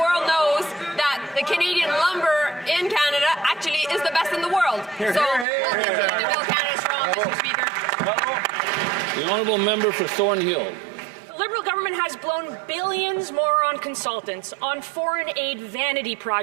knows that the Canadian lumber in Canada actually is the best in the world. So we'll continue to build Canada strong, Mr. Speaker. The honourable member for Thornhill. The Liberal government has blown billions more on consultants, on foreign aid vanity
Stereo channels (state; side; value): drops out; left; at 5.5 s